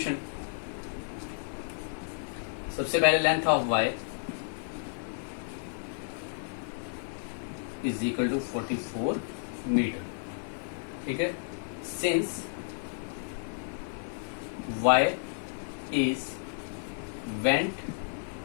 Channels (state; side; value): silent; right; digital silence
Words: सबसे पहले length of wire is equal to 44 metre, ठीक है। Since wire is went